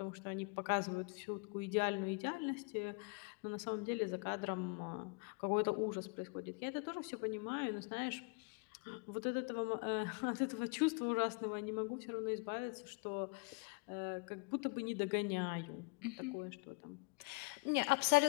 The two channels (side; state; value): right; quieter; 29.3 dB